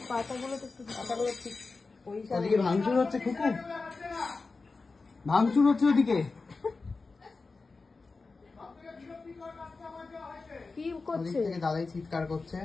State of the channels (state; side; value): quieter; right; 4.0 dB